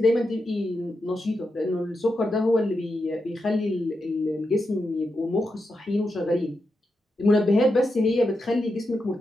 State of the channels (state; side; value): normal; both; correlation 0.86